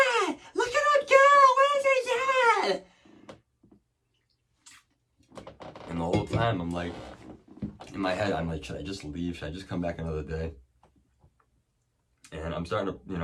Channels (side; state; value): both; identical; correlation 1.00